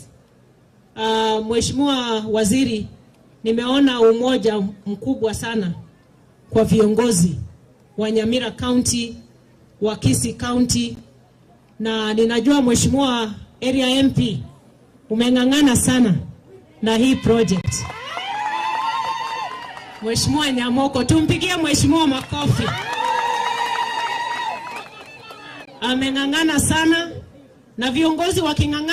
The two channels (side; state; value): both; identical; correlation 1.00